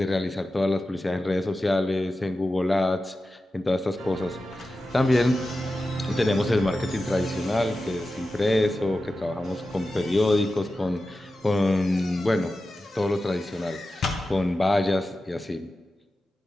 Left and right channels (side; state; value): both; normal; correlation 0.93